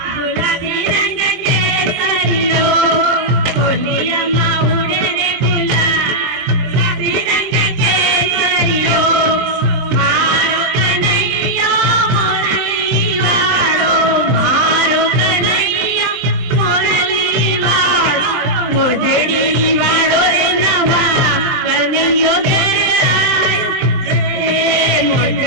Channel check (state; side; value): late; left; 23 ms